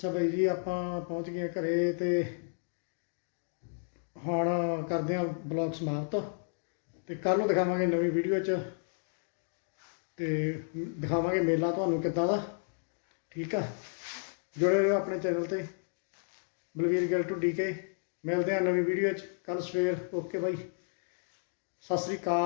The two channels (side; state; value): right; silent; digital silence